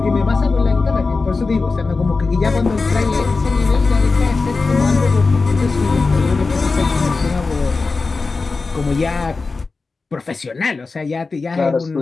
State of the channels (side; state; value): right; quieter; 4.0 dB